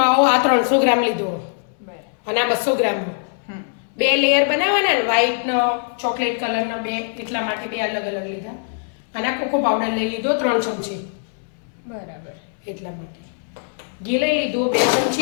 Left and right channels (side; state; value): right; silent; digital silence